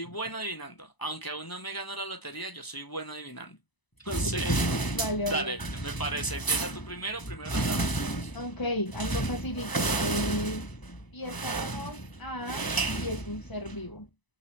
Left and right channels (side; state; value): right; late; 1.0 ms